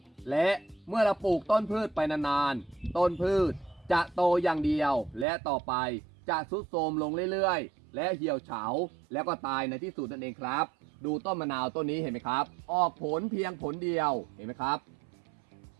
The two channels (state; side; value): drops out; left; at 5.2 s